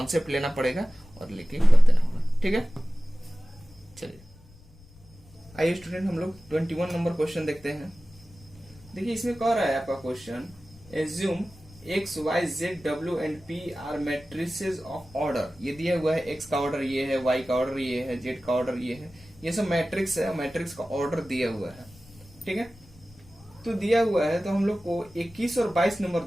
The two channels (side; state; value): left; noise; rumble, 24 dB below the sound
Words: लेना पड़ेगा और लेके कर देना होगा। ठीक है, चलिए आइए स्टूडेंट हम लोग 21 नंबर क्वेश्चन देखते हैं। देखिए इसमें कह रहा है आपका question, assume X Y Z W and P R matrices of order. ये दिया हुआ है, एक्स का ऑर्डर ये है, वाई का ऑर्डर ये है, जेड का ऑर्डर ये है, ये सब मैट्रिक्स है, मैट्रिक्स का ऑर्डर दिया हुआ है। ठीक है, तो दिया हुआ है तो हम लोग को 21 और 22 नंबर